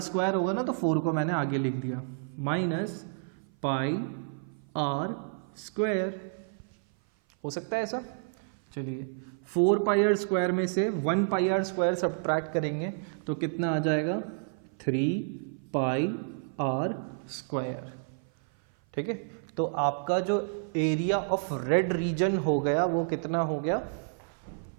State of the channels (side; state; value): left; silent; 56 dB below the other